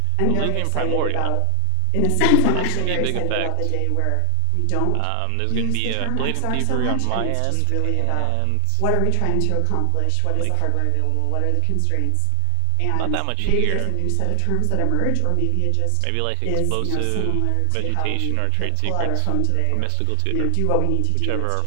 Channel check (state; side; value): different; both; correlation 0.00